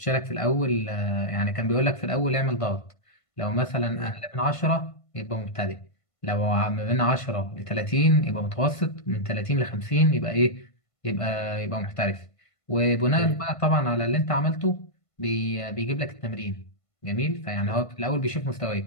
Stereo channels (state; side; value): late; right; 1.5 ms